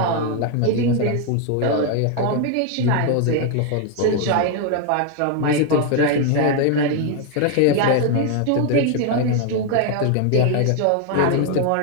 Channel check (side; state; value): both; different; correlation 0.01